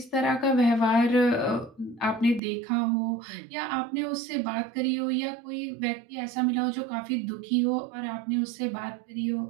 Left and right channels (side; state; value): left; drops out; at 2.4 s